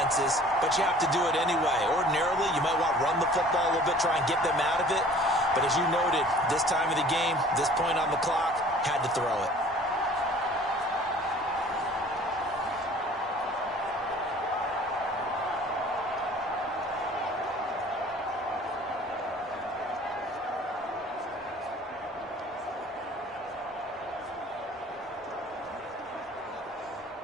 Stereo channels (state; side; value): normal; both; correlation 0.49